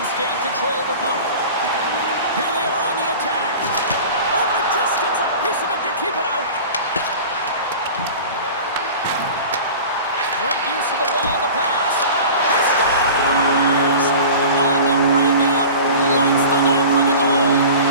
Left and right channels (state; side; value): inverted; both; correlation -0.38